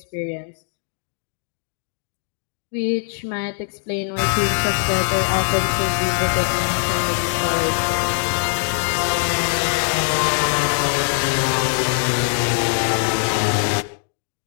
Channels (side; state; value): right; silent; digital silence